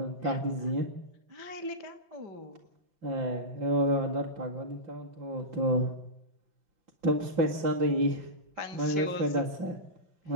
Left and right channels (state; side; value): late; left; 5.9 ms